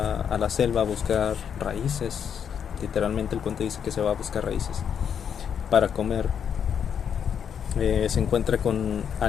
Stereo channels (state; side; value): quieter; right; 7.9 dB